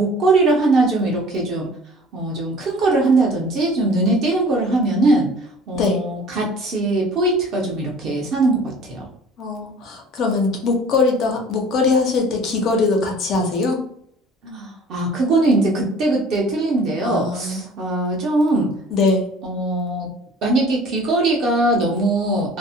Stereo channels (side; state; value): both; normal; correlation 0.47